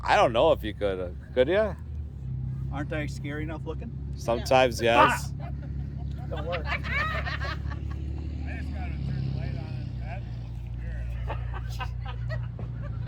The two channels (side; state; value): both; identical; correlation 1.00